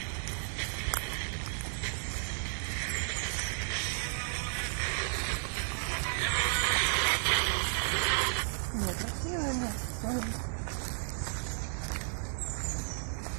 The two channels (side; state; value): left; silent; digital silence